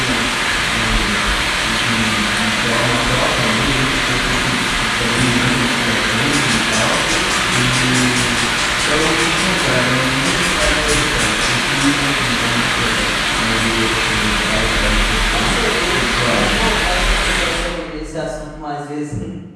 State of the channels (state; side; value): identical; both; correlation 1.00